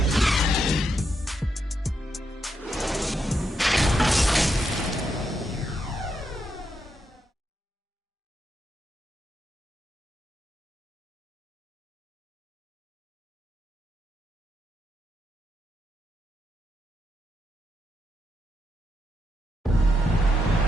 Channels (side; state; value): both; normal; correlation 0.82